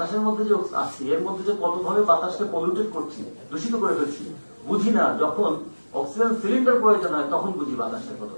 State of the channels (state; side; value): inverted; both; correlation -1.00